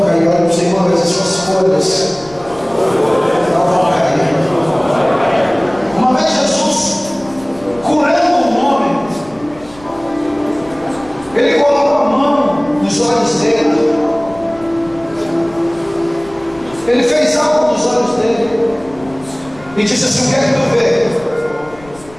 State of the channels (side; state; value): left; noise; rumble, 23 dB below the sound